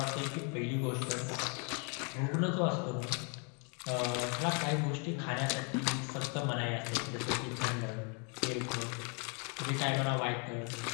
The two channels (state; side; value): quieter; right; 36.5 dB